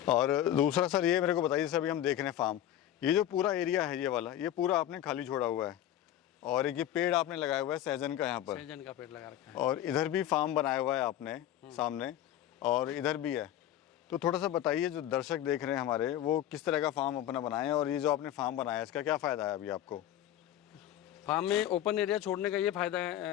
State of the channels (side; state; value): right; quieter; 11.9 dB